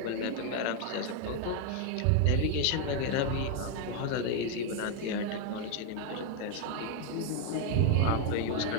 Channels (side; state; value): both; different; correlation 0.01